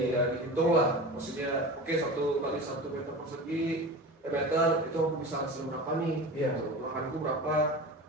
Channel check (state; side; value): normal; both; correlation 0.32